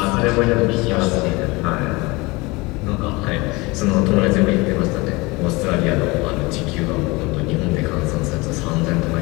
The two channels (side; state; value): right; quieter; 24.1 dB